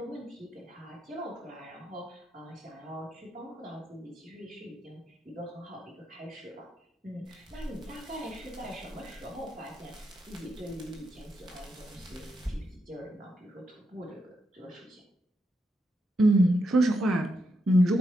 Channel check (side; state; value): both; normal; correlation 0.83